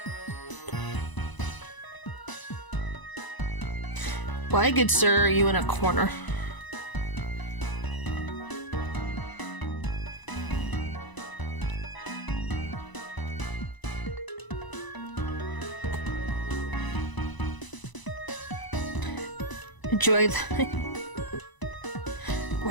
Why, good sir, are you in a corner? Enjoy the...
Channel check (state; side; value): late; right; 1.0 ms